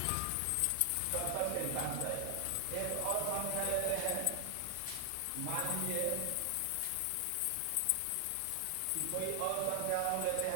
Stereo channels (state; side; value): different; both; correlation 0.00